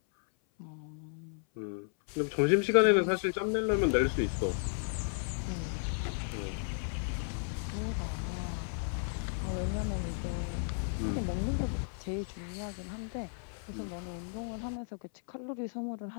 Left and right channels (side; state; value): right; silent; 55 dB below the other